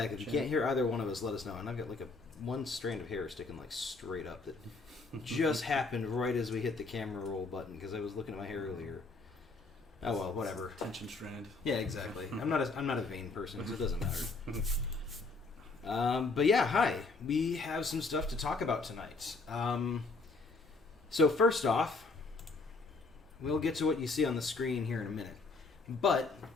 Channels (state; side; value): quieter; right; 3.7 dB